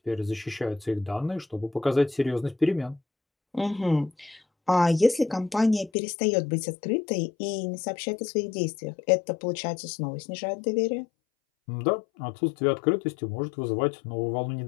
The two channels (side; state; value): right; drops out; at 5.9 s